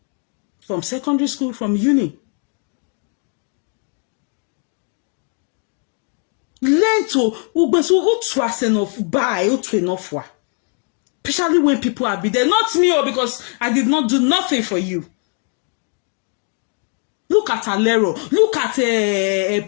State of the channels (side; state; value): right; quieter; 39.8 dB